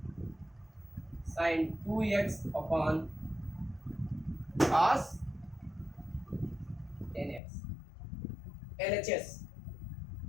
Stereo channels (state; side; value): drops out; right; at 7.4 s